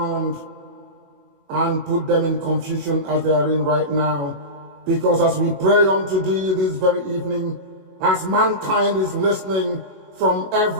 and put them in confusion as they are in right now. Because as we pray unto thee this very evening, as mankind is listening from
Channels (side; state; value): left; late; 21 ms